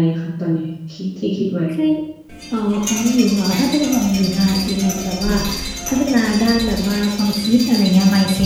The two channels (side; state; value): both; identical; correlation 1.00